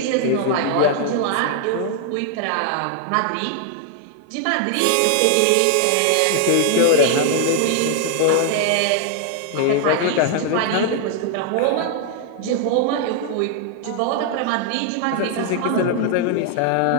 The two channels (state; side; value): different; both; correlation 0.00